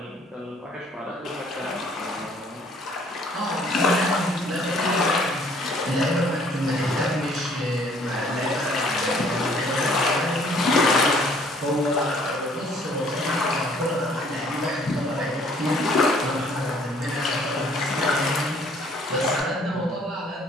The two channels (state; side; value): normal; both; correlation 0.59